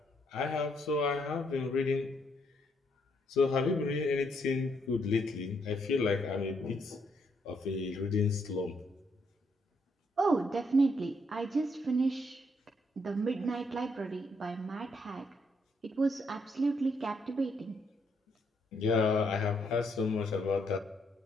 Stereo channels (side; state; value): both; normal; correlation 0.74